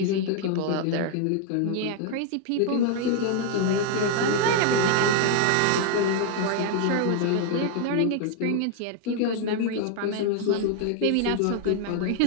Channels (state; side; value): different; both; correlation 0.00